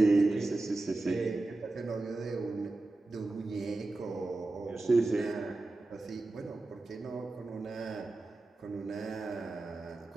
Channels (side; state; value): left; quieter; 3.1 dB